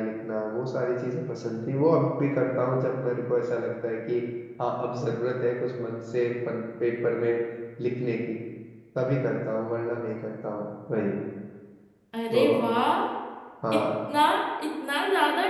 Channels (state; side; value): identical; both; correlation 1.00